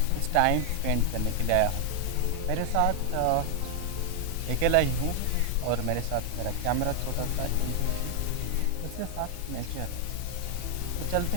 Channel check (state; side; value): different; both; correlation 0.00